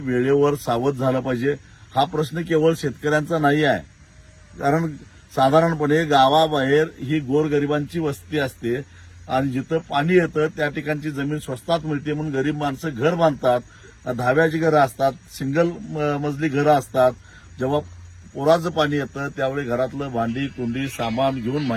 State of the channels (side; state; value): both; identical; correlation 1.00